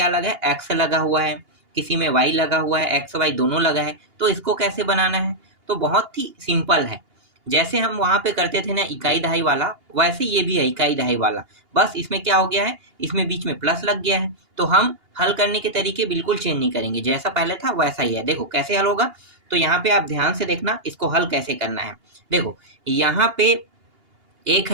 लगा है, एक्स लगा हुआ है, किसी में वाई लगा हुआ है, एक्स वाई दोनों लगा है। तो इसको कैसे बनाना है? तो बहुत ही सिंपल है। जैसे हम वहां पे करते थे ना इकाई दहाई वाला, वैसे ये भी है इकाई दहाई वाला। बस इसमें क्या हो गया है, इसमें बीच में प्लस लग गया है। तो हम हल करने के तरीके बिल्कुल चेंज नहीं करेंगे, जैसा पहले था वैसा ही है। देखो कैसे हल होगा। तो यहाँ पे आप ध्यान से देखना इसको हल कैसे करना है। देखो यहाँ पे 1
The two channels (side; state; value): left; late; 2.8 ms